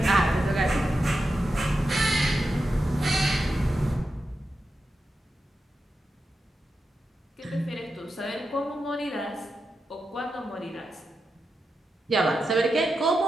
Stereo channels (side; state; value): both; normal; correlation 0.89